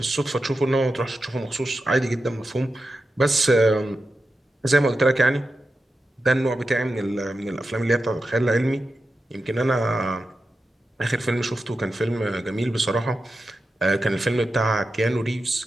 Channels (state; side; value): normal; both; correlation 0.91